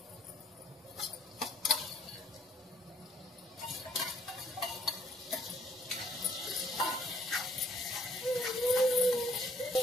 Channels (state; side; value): normal; both; correlation 0.64